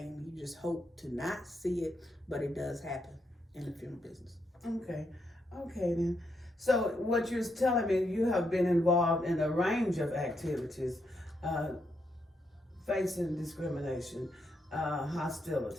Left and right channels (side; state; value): both; normal; correlation 0.80